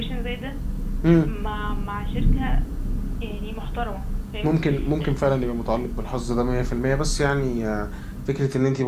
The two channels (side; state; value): both; identical; correlation 1.00